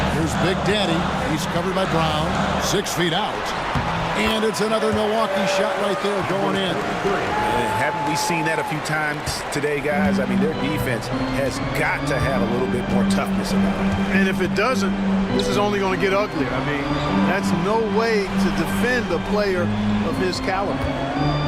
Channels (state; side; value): identical; both; correlation 1.00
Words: Here's Big Daddy. He's covered by Brown. 6 feet out. And it's another Milwaukee shot right there going in. Haven't we seen that a few times today, guys? I mean, their defense has got to have a little bit more toughness about it. And if it doesn't, this is only going to get uglier. I mean, that's no way to defend a player of his caliber.